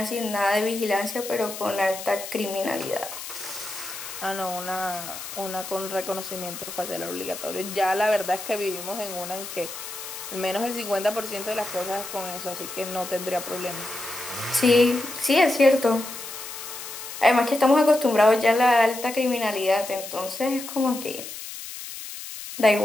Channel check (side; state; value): left; noise; hiss, 10 dB below the sound